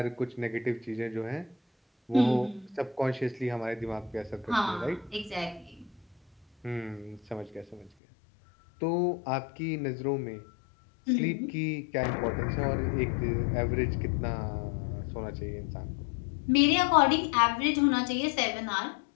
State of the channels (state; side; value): drops out; right; at 7.9 s